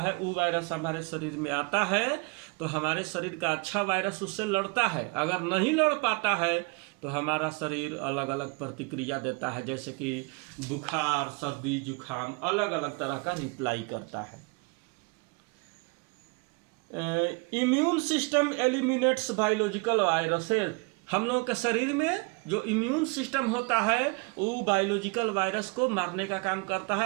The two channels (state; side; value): quieter; left; 29.7 dB